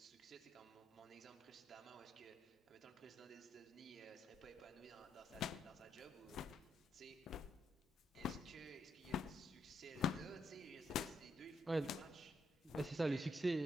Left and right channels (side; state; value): both; normal; correlation 0.79